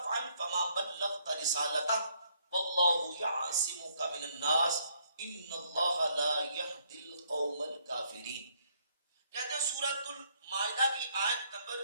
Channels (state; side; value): inverted; both; correlation -0.69